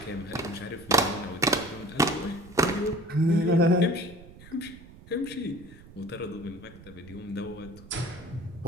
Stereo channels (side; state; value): right; noise; rumble, 19 dB below the sound